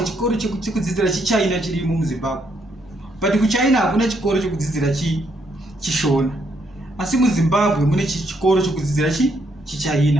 chikoro chekudzidzira chiChina chirimo muZimbabwe, but kuChina hakuna chikoro chekudzidzira chishona, asi muZimbabwe mune chikoro chekudzidzira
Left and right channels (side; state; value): both; normal; correlation 0.74